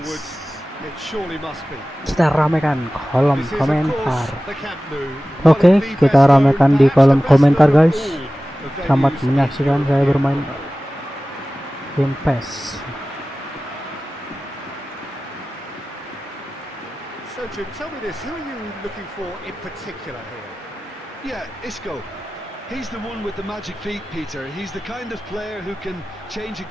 woods. It surely must be. Kita ramekan kolom This is, of course, komentar. the Camp Nou, one Oke, of the kita best known, ramekan di perhaps kolom the best komentar known of guys. all the Selamat venues in menyaksikan saya European bermain football. game PES. So Jim, tell me this, who are you looking for in particular here? Yeah, Isco. He's the one with the magic feet, Peter. He's the kind of player who can change a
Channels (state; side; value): normal; both; correlation 0.96